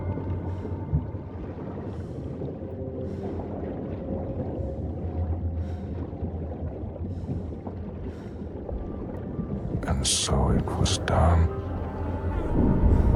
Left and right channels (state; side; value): identical; both; correlation 1.00